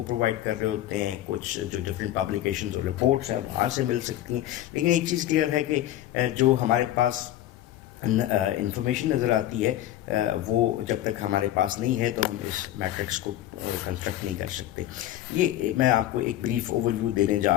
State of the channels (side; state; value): right; quieter; 13.3 dB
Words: پرووائڈ کر رہے ہوتے ہیں, کچھ جو ڈفرینٹ پبلیکیشنز اور رپورٹس ہیں وہاں سے مل سکتی ہیں. لیکن ایک چیز کلیئر ہے کہ جو ہمارے پاس انفارمیشن نظر آتی ہے وہ جب تک ہمارے پاس نہیں ہے تو ہم اس میٹرکس کو کنسٹرکٹ نہیں کر سکتے. یہ میں آپ کو ایک بریف اوور ویو دینے